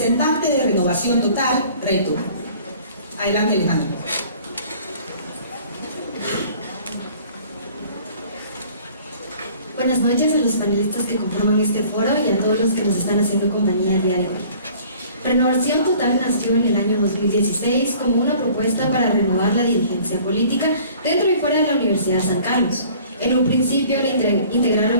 de Renovación Total, Reto. Adelante, Alejandra. Buenas noches a los panelistas que conforman este foro y a todos los que nos están haciendo compañía el día de hoy. Renovación Total nació en el año 2016 como una propuesta para renovar la dirigencia política dentro y fuera de la Universidad de San Carlos. En un principio le integraron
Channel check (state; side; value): inverted; both; correlation -0.51